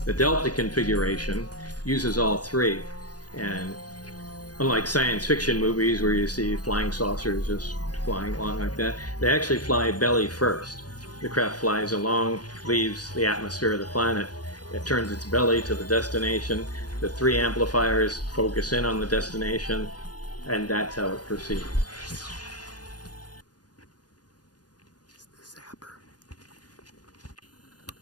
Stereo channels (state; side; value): late; right; 0.69 ms